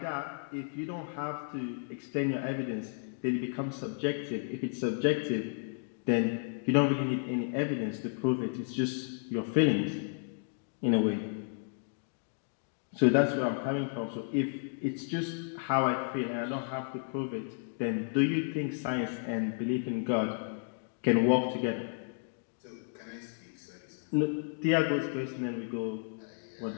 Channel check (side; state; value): right; silent; digital silence